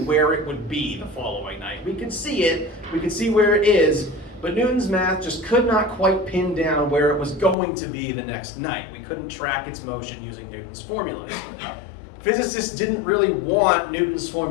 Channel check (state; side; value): drops out; right; at 7.6 s